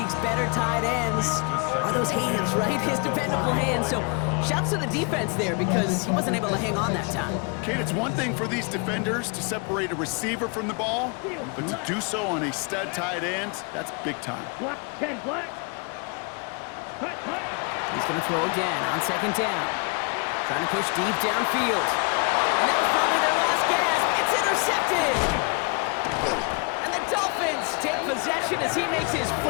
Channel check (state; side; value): quieter; right; 32.9 dB